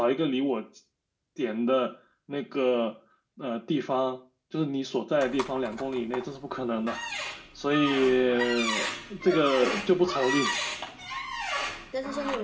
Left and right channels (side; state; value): both; identical; correlation 1.00